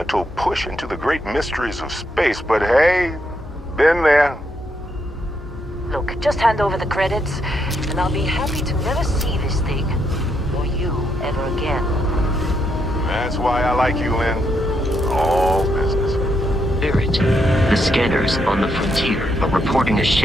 push into the great mysteries of space, but hey, been there. Look, just hand over the credits, and I'll be happy to never see this thing, or you, ever again. That's why I like you, Lynn. All business. Barrett, the scanners on the frontier are reporting a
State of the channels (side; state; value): both; normal; correlation 0.78